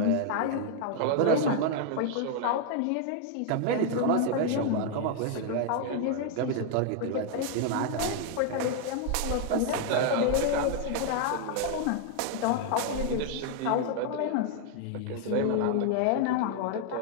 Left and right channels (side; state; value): both; different; correlation 0.00